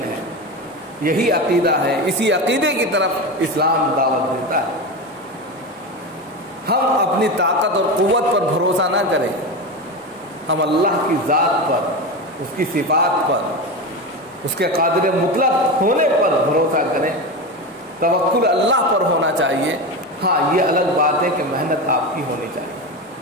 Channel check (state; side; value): normal; both; correlation 0.21